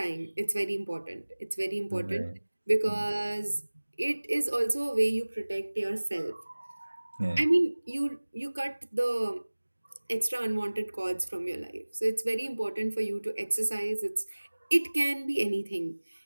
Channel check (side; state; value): both; inverted; correlation -1.00